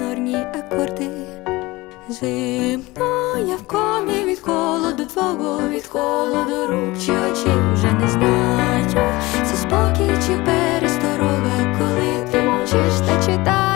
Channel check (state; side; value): quieter; right; 21.0 dB